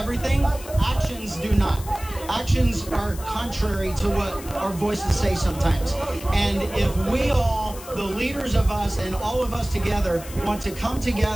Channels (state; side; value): noise; left; hiss, 15 dB below the sound